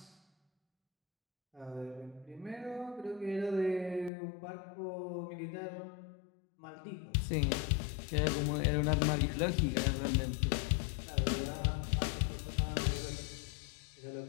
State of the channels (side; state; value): right; drops out; at 4.1 s